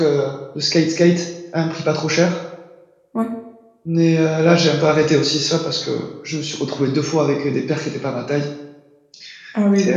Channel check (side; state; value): both; identical; correlation 1.00